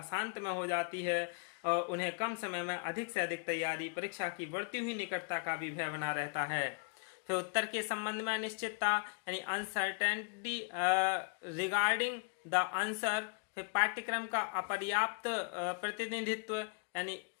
में हो जाती है और उन्हें कम समय में अधिक से अधिक तैयारी, परीक्षा की बढ़ती हुई निकटता का भी भय बना रहता है। फिर उत्तर के संबंध में अनिश्चितता, यानी अनसर्टेनिटी रिगार्डिंग द आंसर। फिर पाठ्यक्रम का अपर्याप्त प्रतिनिधित्व, यानी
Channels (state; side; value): quieter; right; 37.9 dB